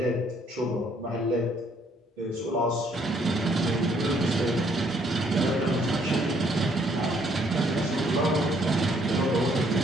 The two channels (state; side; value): normal; both; correlation 0.66